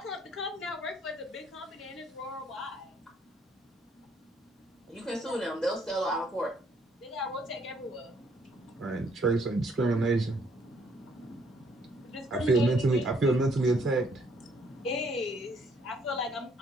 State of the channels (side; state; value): both; normal; correlation 0.67